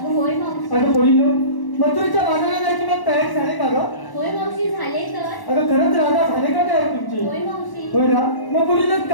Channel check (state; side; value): late; right; 1.1 ms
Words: होय मावशी. अगं बोलिनो, मथुरेच्या बाजाराला जायची मग तयारी झाली का गं? होय मावशी, झाले तर. अगं खरंच राधा झाले का तयार तुमची? होय मावशी. होय ना, मग बोलिनो